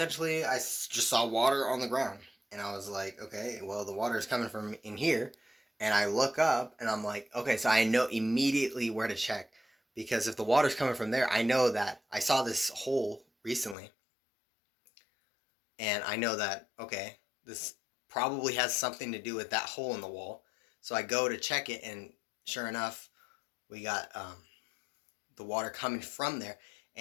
I just saw water on the ground, and I was like, okay, well, the water is coming from in here, and I look up and I'm like, okay, so I know immediately where to check, because if the water's coming from there, I know that I saw this hole recently, and I know that, okay, this probably has something to do with that hole in the wall. So I go to check it, and sure enough, we got the water coming from there.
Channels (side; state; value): right; drops out; at 13.8 s